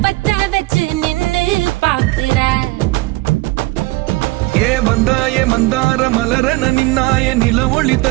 பத்த வச்சு நின்னு பாக்குற. ஏ வந்தாய மந்தார மலரன நின்னாய நில ஒளி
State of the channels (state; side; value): quieter; left; 21.0 dB